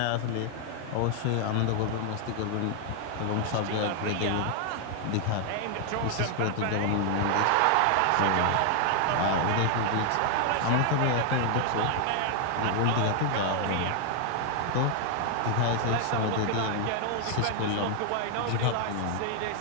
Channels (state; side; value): different; both; correlation 0.00